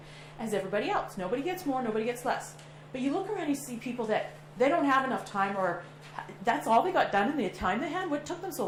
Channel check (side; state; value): both; identical; correlation 1.00